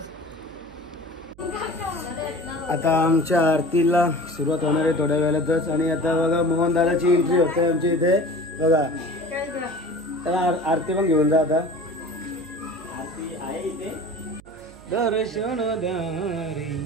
आता आमच्या आरतीला सुरुवात होणार आहे थोड्या वेळातच. आणि आता बघा मोहन दादाची एंट्री होते आमच्या इथे बघा. त्याला आरती पण घेऊन जा. आता आरती आहे इथे. दर्शन द्या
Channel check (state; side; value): noise; right; hum, 23 dB below the sound